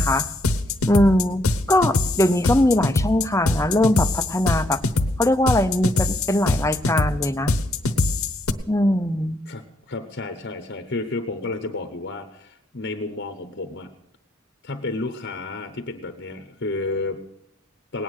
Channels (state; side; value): normal; both; correlation 0.73